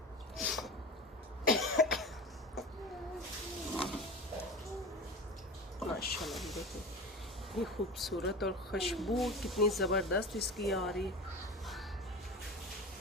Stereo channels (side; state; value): both; normal; correlation 0.30